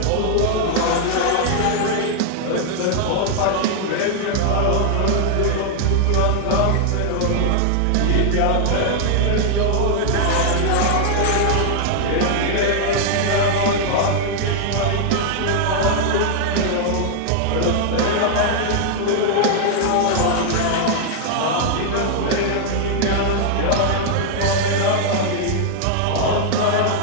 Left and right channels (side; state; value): both; different; correlation 0.00